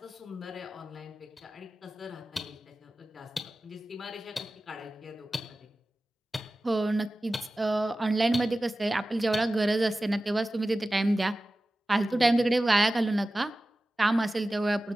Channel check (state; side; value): normal; both; correlation 0.96